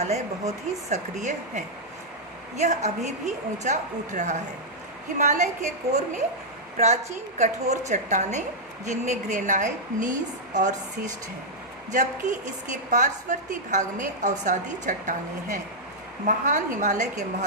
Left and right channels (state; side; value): normal; both; correlation -0.06